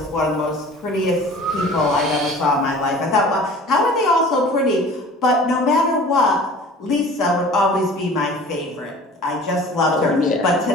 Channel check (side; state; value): both; normal; correlation 0.44